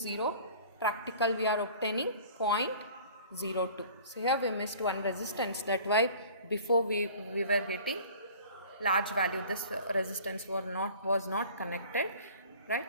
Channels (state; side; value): inverted; both; correlation -0.46